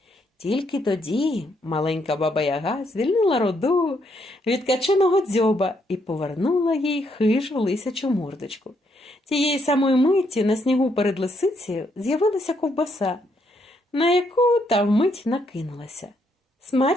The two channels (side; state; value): both; normal; correlation 0.74